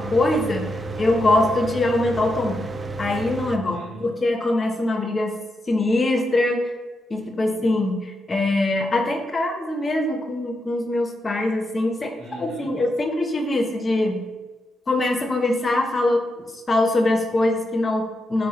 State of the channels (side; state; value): both; normal; correlation 0.85